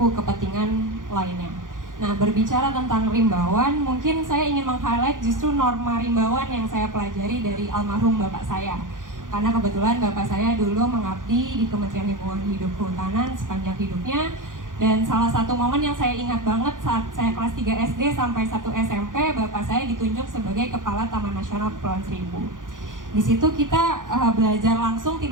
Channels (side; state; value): left; late; 0.88 ms